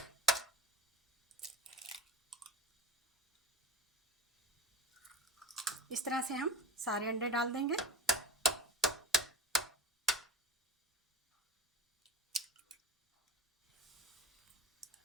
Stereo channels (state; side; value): normal; both; correlation 0.31